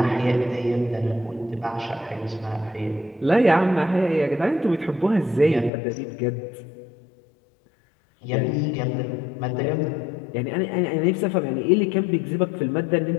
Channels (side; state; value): right; drops out; at 5.7 s